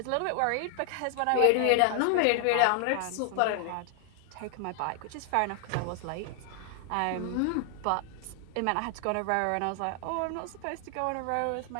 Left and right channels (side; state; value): both; different; correlation 0.00